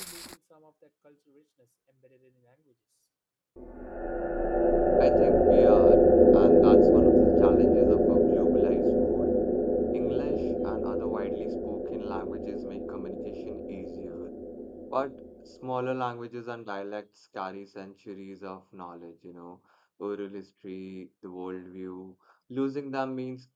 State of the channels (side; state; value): both; identical; correlation 1.00